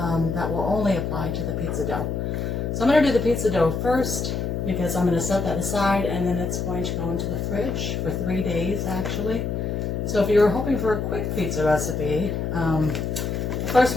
that will only apply to the pizza dough. So I'm going to do the pizza dough first because I'm going to set that aside and then it's going to go into the fridge for 3 days actually. So if you're hoping for a quick pizza recipe, the first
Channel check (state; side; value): noise; left; hum, 2 dB below the sound